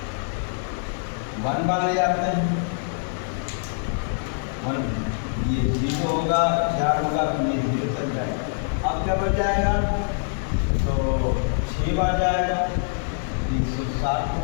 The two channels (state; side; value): silent; right; digital silence